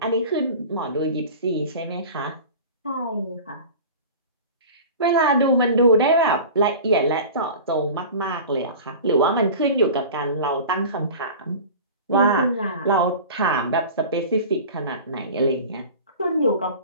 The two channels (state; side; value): inverted; both; correlation -0.37